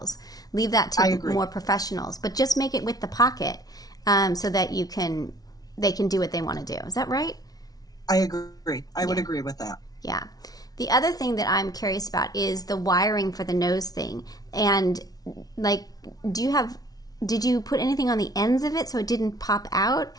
Leave that to more professionals. But just make it with the pocket, so that they can do what they want to do. Is that right? I agree. I would agree with that. Yeah. The other thing that I'm curious about is the wiring for the nose thing. And did you put anything on the ends of it so it didn't pop out?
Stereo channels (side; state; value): right; late; 0.18 ms